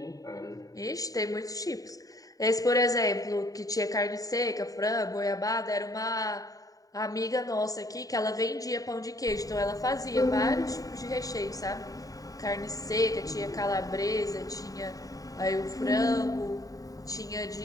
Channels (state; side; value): late; right; 0.17 ms